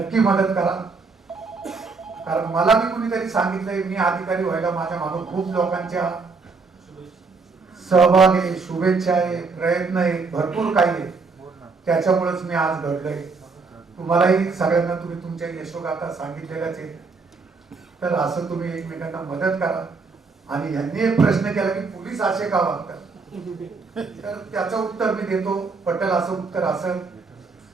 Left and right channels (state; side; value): quieter; left; 4.4 dB